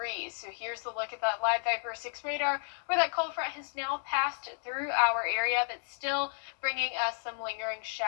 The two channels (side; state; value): right; silent; digital silence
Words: So here's the look at that live Viper 6 radar, where that cold front has now passed through our area, but still bringing us some lingering